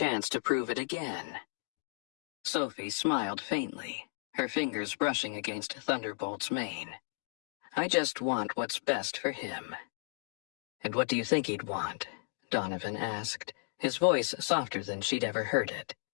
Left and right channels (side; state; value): right; silent; digital silence